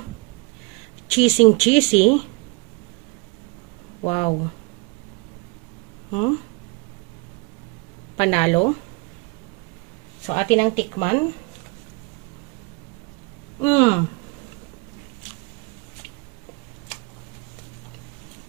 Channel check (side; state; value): left; quieter; 30.4 dB